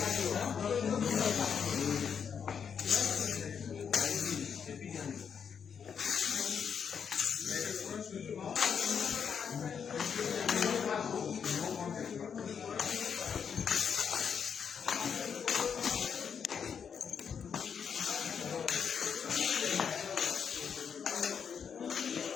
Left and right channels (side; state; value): right; quieter; 7.1 dB